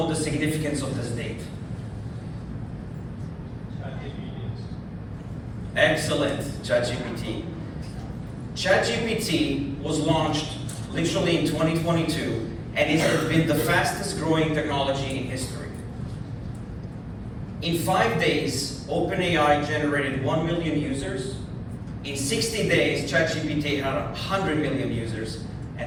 the significance of this date? Excellent, ChatGPT. ChatGPT was launched literally in 2022, and it has been the fastest growing technology in history. In 5 days, OpenAI generated 1 million users. In 60 days, ChatGPT had 100 million users,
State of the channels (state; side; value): identical; both; correlation 1.00